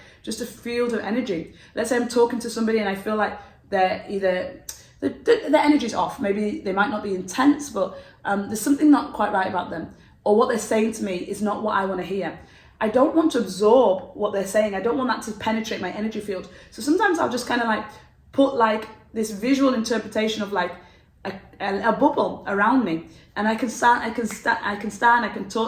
just a field of energy. Let's say I'm talking to somebody and I feel like they're either the energy's off. Maybe they might not be intense, but there's something not quite right about them, or what they're saying to me is not what I want to hear. I don't want to absorb what they're saying. I don't want that to penetrate my energy field. So sometimes I'll just kind of like put like this visual interpretation of like a bubble around me, and I can talk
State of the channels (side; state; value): both; identical; correlation 1.00